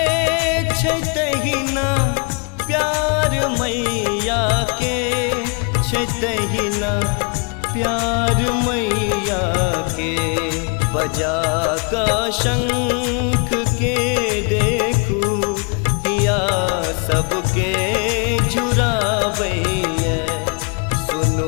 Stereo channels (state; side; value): quieter; right; 35.1 dB